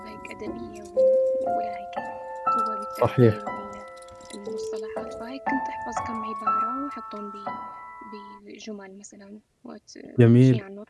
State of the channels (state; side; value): identical; both; correlation 1.00